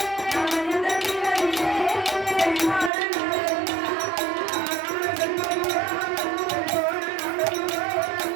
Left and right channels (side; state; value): left; drops out; at 2.9 s